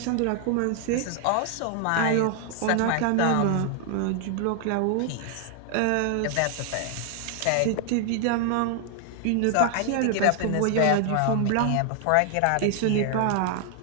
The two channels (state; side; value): different; both; correlation 0.00